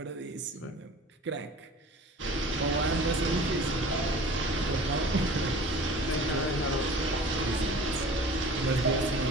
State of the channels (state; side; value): normal; both; correlation 0.43